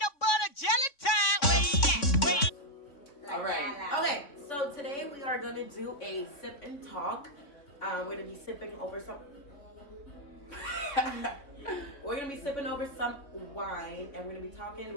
butter jelly time. Where you at? All right. Okay, so today we are gonna do a sip and talk. We're gonna be sipping over some. We're gonna be sipping over some wine, and we're gonna be talking.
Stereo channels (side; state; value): right; late; 3.6 ms